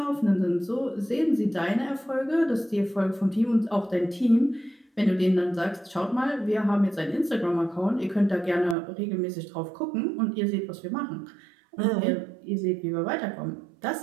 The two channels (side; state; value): left; drops out; at 8.8 s